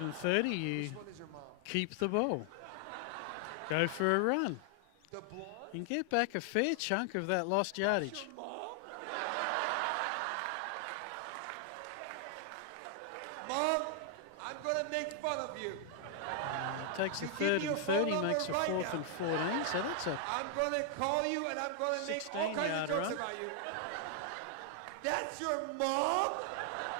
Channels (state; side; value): different; both; correlation 0.00